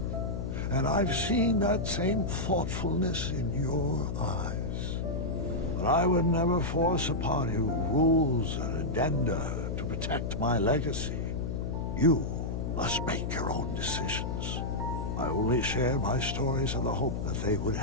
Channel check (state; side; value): noise; left; hum, 2 dB below the sound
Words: and I've seen that same thoughtfulness in your eyes. But I would never force upon you rules and addenda to protect my legacy. You must make your own decisions. I only share my stories in the hope that they would